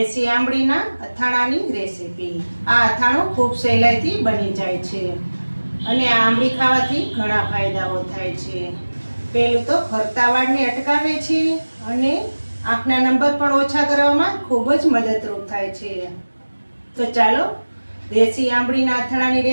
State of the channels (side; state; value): both; inverted; correlation -1.00